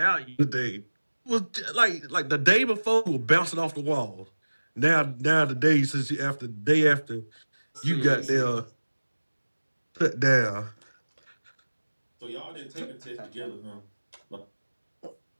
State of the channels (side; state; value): both; inverted; correlation -1.00